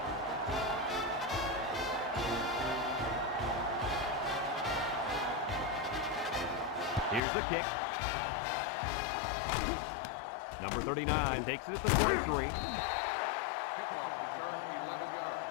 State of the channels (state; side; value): drops out; right; at 7.2 s